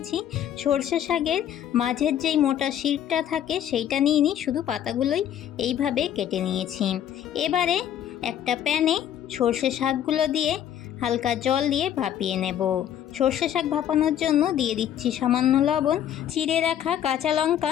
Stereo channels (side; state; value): right; quieter; 10.3 dB